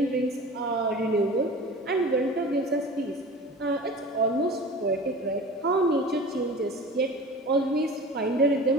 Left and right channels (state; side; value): normal; both; correlation 0.38